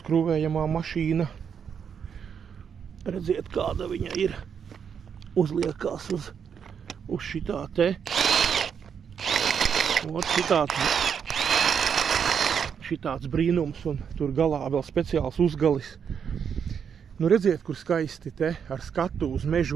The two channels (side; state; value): left; quieter; 7.3 dB